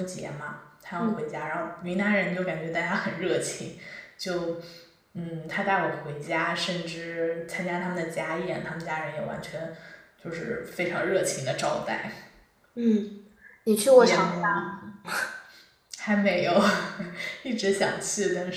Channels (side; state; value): both; identical; correlation 1.00